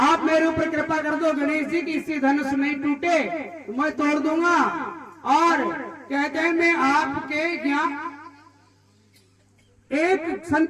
मेरे ऊपर कृपा कर दो गणेश जी की, इससे धनुष नहीं टूटे तो मैं तोड़ दूंगा, और कहते हैं मैं आपके यहाँ एक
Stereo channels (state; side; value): identical; both; correlation 1.00